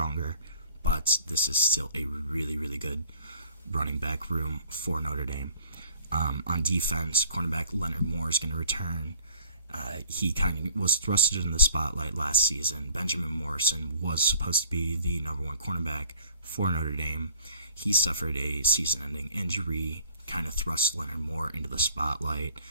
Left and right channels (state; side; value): inverted; both; correlation -0.51